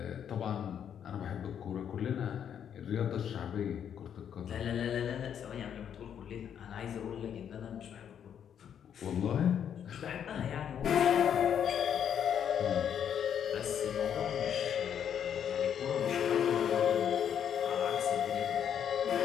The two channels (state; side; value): quieter; right; 8.8 dB